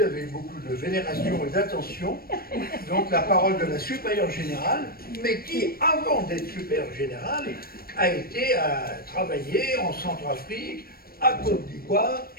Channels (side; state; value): right; late; 0.44 ms